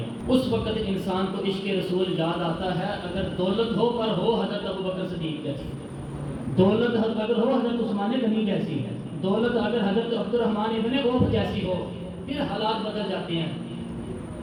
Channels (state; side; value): identical; both; correlation 1.00